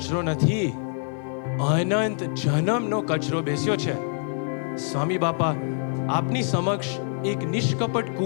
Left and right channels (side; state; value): right; silent; 58 dB below the other